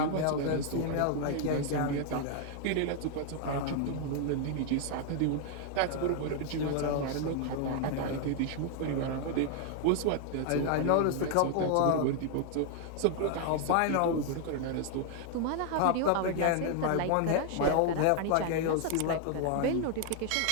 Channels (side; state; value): both; different; correlation 0.00